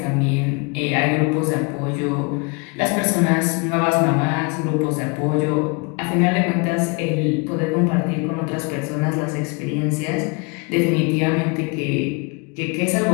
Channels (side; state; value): right; quieter; 31.1 dB